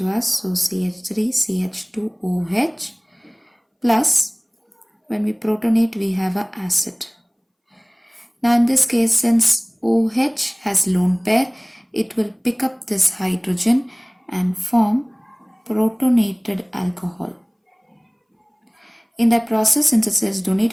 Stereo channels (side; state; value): both; identical; correlation 1.00